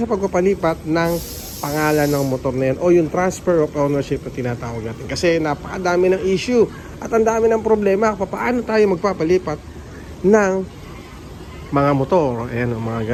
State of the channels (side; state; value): both; identical; correlation 1.00